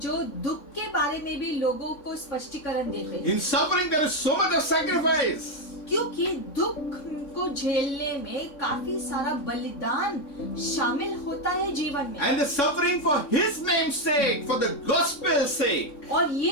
दुख के बारे में भी लोगों को स्पष्टीकरण देते हैं। In suffering there is so much of sacrifice. क्योंकि दुख को झेलने में काफी सारा बलिदान शामिल होता है जीवन में, And the suffering for His name's sake, for the gospel's sake. और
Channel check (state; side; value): late; right; 3.6 ms